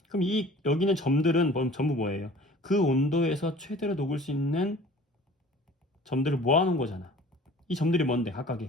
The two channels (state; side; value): normal; both; correlation 0.47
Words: 그럼 여기는 점들은 전부 뭐예요? 그 온도에서 최대로 녹을 수 있는 점들을 모아놓은 거잖아. 이 점들이 뭔데?